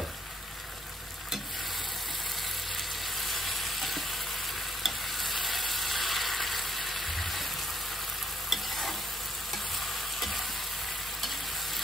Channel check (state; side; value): normal; both; correlation 0.73